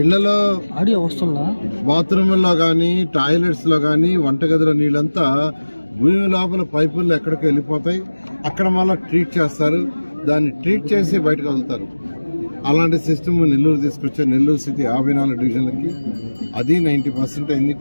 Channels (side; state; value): both; inverted; correlation -1.00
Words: బాత్రూమ్లో కానీ, టాయిలెట్స్ లో కానీ, వంటగదిలో నీళ్ళంతా భూమి లోపల పైపుల్లో ఎక్కడికి వెళ్ళిపోతాయి. అక్కడ మళ్ళీ ట్రీట్ చేస్తారు, దాన్ని ట్రీట్ చేసి బయటకు వదులుతారు. అలాంటి సిస్టమ్ నెల్లూరు తీసుకొచ్చే నెల్లూరు సిటీ 54 డివిజన్లకి అది 90% అయింది.